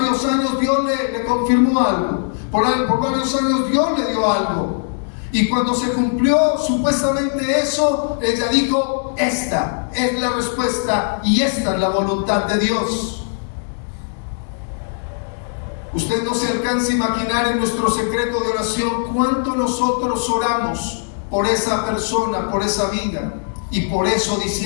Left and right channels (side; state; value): right; silent; digital silence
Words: años Dios le confirmó algo. Por varios años Dios le dio algo. Y cuando se cumplió supuestamente eso, ella dijo: esta es la respuesta y esta es la voluntad de Dios. Usted no se alcanza a imaginar en nuestro secreto de oración cuánto nosotros oramos por esa persona, por esa vida. Y por eso